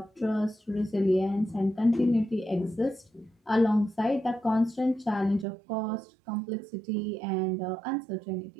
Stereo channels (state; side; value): drops out; left; at 5.5 s